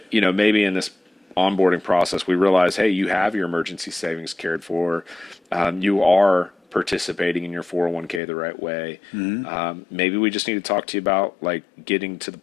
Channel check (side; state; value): right; drops out; at 8.2 s